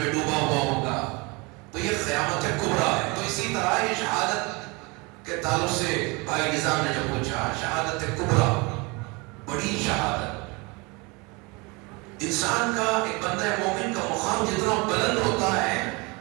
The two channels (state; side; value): quieter; left; 27.4 dB